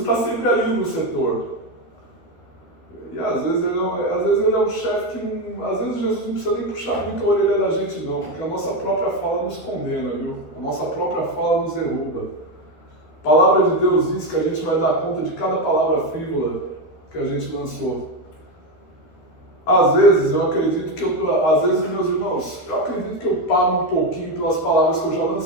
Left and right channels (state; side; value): late; right; 13 ms